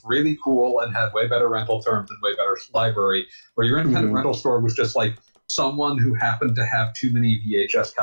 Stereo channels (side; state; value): both; inverted; correlation -1.00